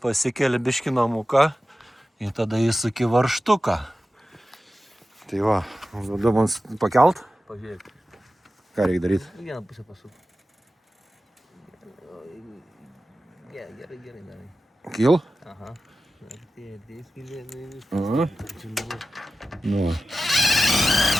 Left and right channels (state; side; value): normal; both; correlation 0.94